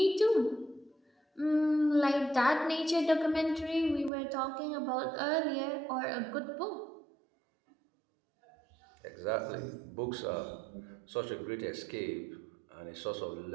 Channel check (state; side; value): drops out; left; at 4.1 s